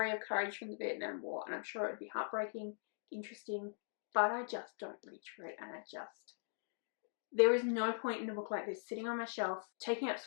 of courage from the Vietnam War, and I'm sure it would be heartbreaking, interesting, but I just don't reach for it, and there is no point in a book like this sitting on my shelf, taking up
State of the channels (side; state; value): right; silent; digital silence